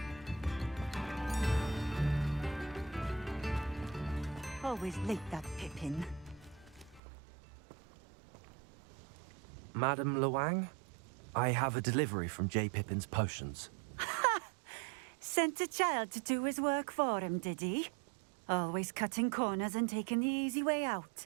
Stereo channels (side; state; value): left; drops out; at 7.0 s